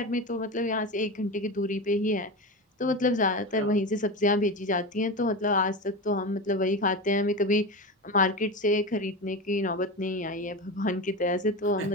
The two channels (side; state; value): both; normal; correlation 0.23